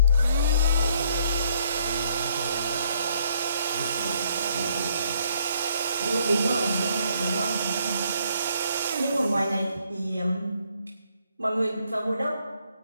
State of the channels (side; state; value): both; inverted; correlation -0.68